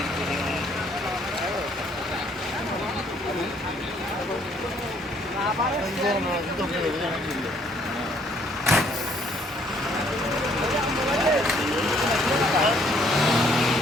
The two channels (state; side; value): normal; both; correlation 0.65